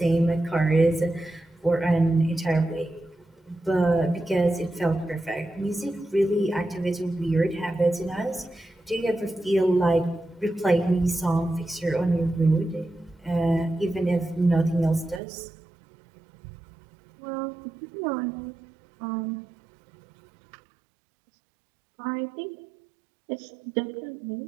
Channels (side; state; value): left; drops out; at 15.2 s